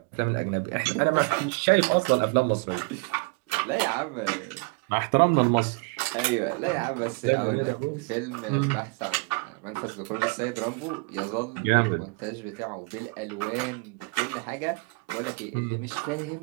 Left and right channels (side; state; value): left; quieter; 27.7 dB